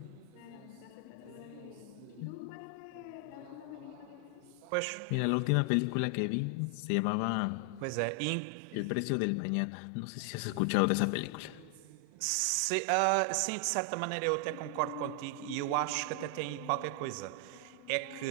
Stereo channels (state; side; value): different; both; correlation 0.00